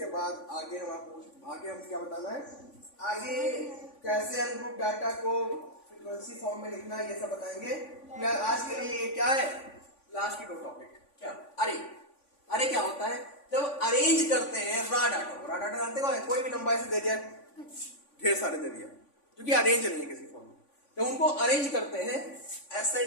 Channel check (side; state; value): right; late; 3.5 ms